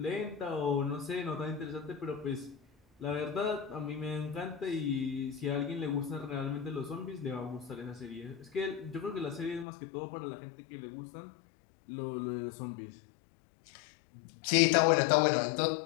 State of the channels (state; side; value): drops out; right; at 9.7 s